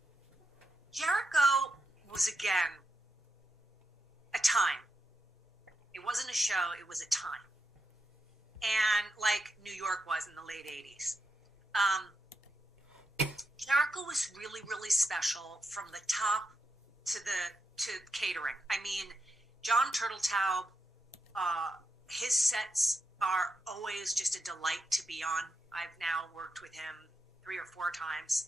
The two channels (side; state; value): both; normal; correlation 0.85